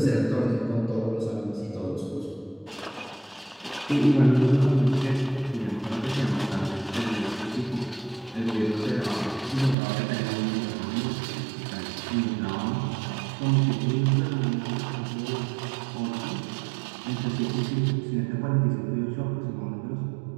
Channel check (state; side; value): drops out; left; at 9.8 s